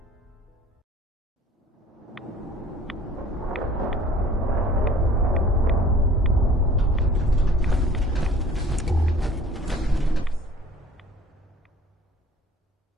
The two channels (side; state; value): both; normal; correlation 0.50